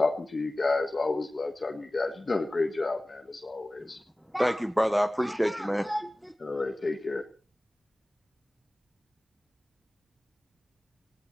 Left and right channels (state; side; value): normal; both; correlation 0.97